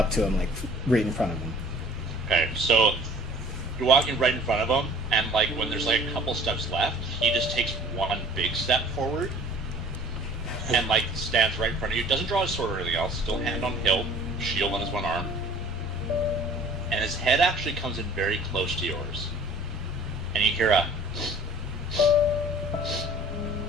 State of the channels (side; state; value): both; normal; correlation 0.50